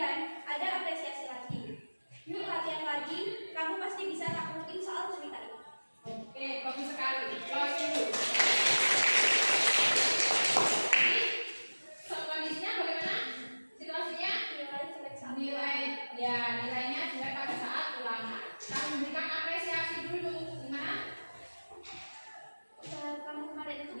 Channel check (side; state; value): both; inverted; correlation -1.00